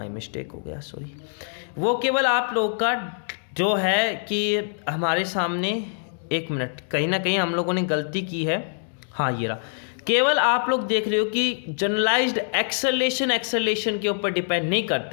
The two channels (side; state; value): right; silent; digital silence